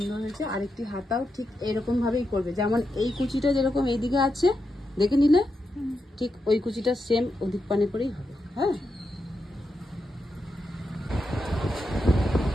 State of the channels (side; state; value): both; normal; correlation 0.86